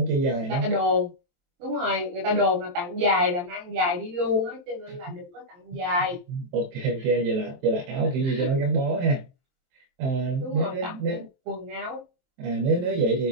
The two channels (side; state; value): left; late; 23 ms